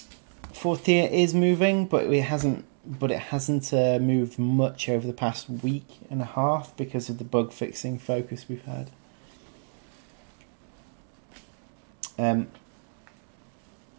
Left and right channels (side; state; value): left; silent; digital silence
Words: Fourth tier is moving, but it hasn't moved much over the past week and a half because of the bug fixing focus we've had.